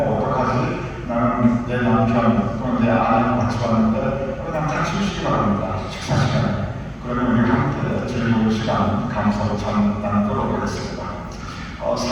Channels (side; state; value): both; identical; correlation 1.00